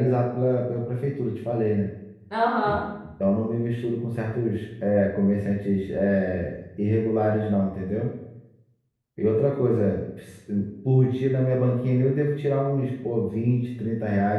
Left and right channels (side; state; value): both; identical; correlation 1.00